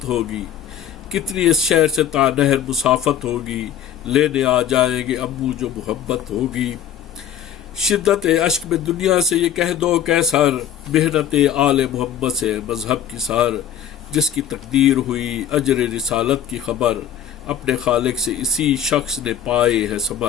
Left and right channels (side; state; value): right; quieter; 9.4 dB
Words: نہر مسافت ہوگی، لینے آ جائیں گے ابو جو محبت ہوگی۔ شدت اشک میں دنیا سے یہ کہہ دو کیسر، محنت آل محمد سے مذہب کی سار۔ جس کی تقدیر ہوئی اجر رسالت کی خبر، اپنے خالق سے اسی شخص نے پائے ہے